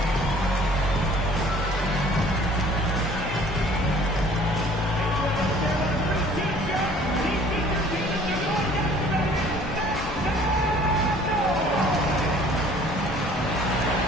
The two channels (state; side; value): normal; both; correlation 0.53